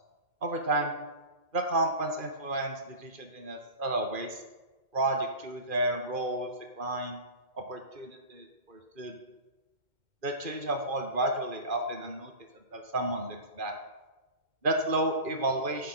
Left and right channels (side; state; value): left; late; 2.2 ms